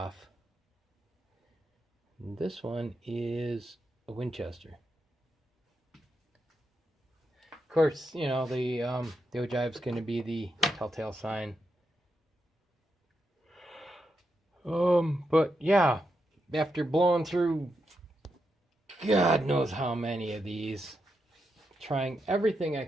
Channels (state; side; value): normal; both; correlation 0.84